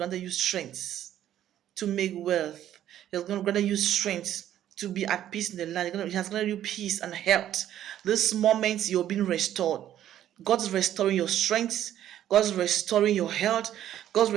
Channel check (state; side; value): quieter; left; 11.6 dB